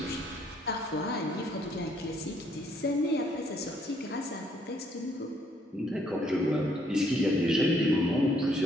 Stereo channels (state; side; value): normal; both; correlation 0.67